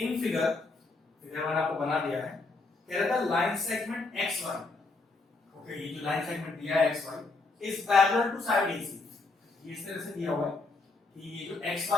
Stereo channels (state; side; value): quieter; right; 3.5 dB